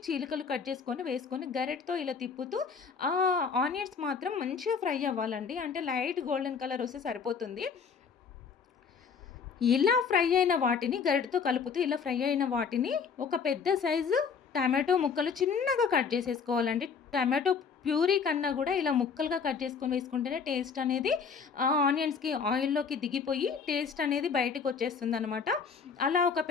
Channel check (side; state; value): right; quieter; 5.9 dB